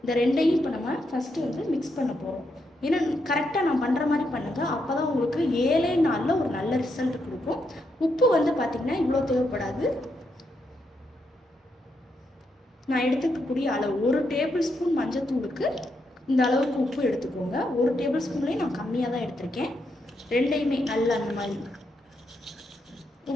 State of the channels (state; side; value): normal; both; correlation 0.80